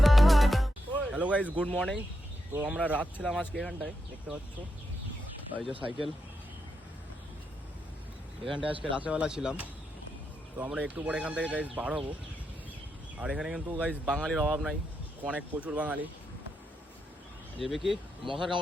Hello guys, good morning. তো আমরা রাত ছিলাম আজকে এখানটায়, দেখতে পাচ্ছ এই যে সাইকেল, এখানটায় আজকে রাতেরবেলা ছিলাম। তো আমরা একটু পরে এখান থেকে গাইস বার হবো। আর এখানে কিন্তু গাইস বাঙালির অভাব নাই, অনেক প্রচুর বাঙালি। যাবে কি মশার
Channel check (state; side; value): normal; both; correlation 0.84